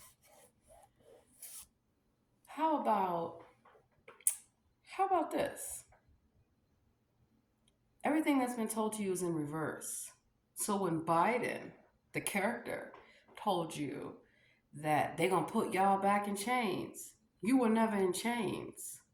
How about this? Everything that's been told to you is in reverse. So when Biden, the character, told you that they're gonna put y'all back in chains, you were never in chains.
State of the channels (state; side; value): identical; both; correlation 1.00